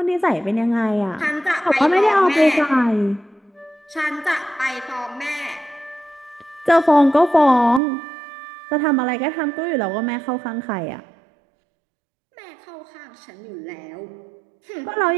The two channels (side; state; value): left; drops out; at 7.8 s